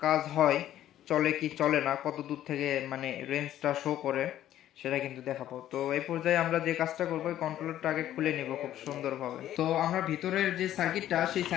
কাজ হয়, চলে কি চলে না, কত দূর থেকে মানে রেঞ্জটা শো করে, সেটা কিন্তু দেখাবো। তো এই পর্যায়ে আমরা যে কাজটা করবো, এই কন্ট্রোলারটা আগে খুলে নিব খুব সুন্দরভাবে। তো আমরা ভিতরের যে সার্কিটটা, সেই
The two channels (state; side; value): quieter; right; 12.3 dB